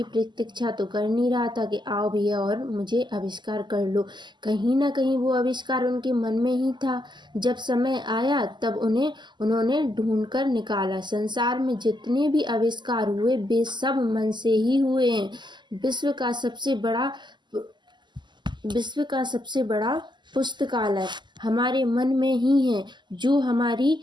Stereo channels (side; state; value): left; late; 0.21 ms